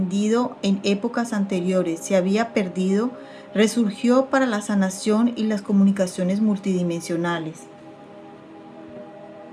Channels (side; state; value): both; identical; correlation 1.00